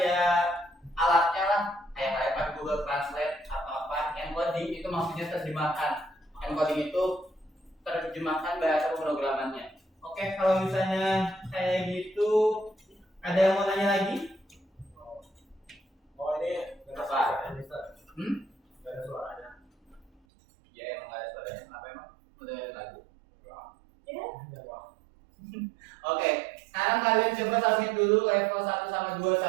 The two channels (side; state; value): left; drops out; at 20.1 s